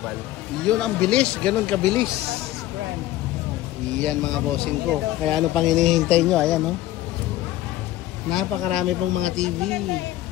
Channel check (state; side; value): quieter; right; 15.1 dB